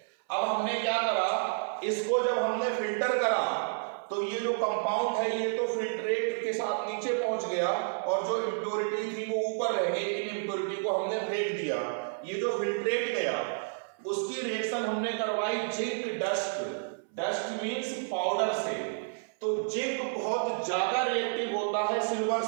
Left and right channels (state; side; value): silent; left; 58 dB below the other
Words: अब हमने क्या करा, इसको जब हमने फिल्टर करा तो ये जो कंपाउंड है ये तो फिल्ट्रेट के साथ नीचे पहुंच गया और जो इम्प्योरिटी थी वो ऊपर रह गई। इन इम्प्योरिटी को हमने फेंक दिया। ये जो फिल्ट्रेट गया उसकी रिएक्शन हमने करवाई zinc dust. Dust means powder से। तो जिंक बहुत ज्यादा रिएक्टिव होता है सिल्वर